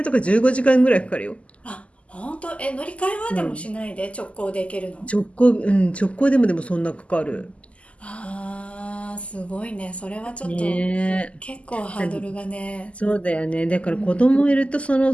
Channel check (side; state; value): right; late; 0.061 ms